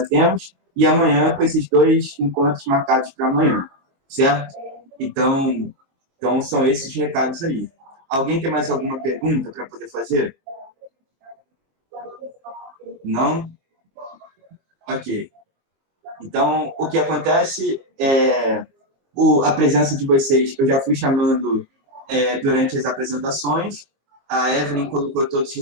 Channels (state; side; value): late; left; 22 ms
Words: temos, e amanhã com esses 2 encontros marcados para amanhã, certo? Então, são esses recados aí. Alguém tem mais alguma pergunta para poder fazer? Não? Ok. Então, o que acontece é a presença de vocês, eu já fui chamando durante as apresentações. A Evelyn colocou todos os